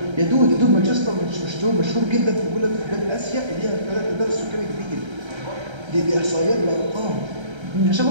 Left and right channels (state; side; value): late; left; 1.3 ms